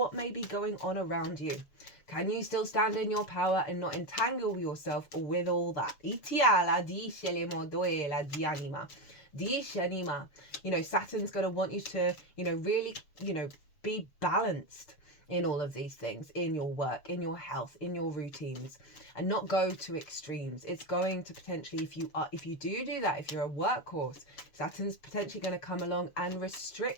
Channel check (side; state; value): right; late; 7.0 ms